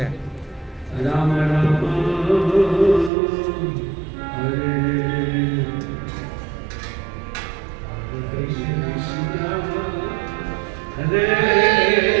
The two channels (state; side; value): drops out; left; at 3.1 s